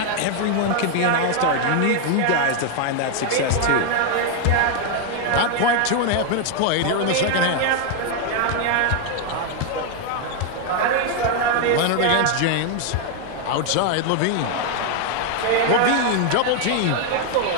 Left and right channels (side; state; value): both; different; correlation 0.00